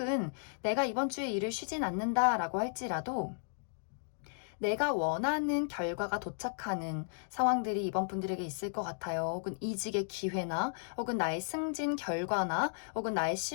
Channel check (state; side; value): silent; right; digital silence